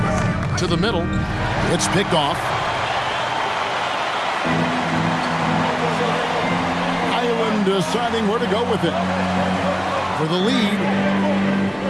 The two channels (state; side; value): identical; both; correlation 1.00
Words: To the middle. It's picked off. Highland deciding where to go with it. For the lead.